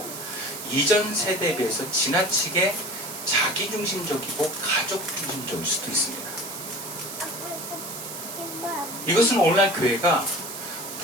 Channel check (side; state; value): right; noise; hiss, 8 dB below the sound